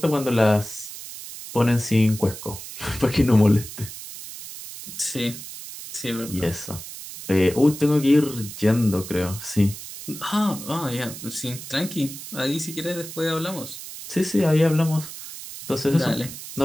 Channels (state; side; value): noise; right; hiss, 12 dB below the sound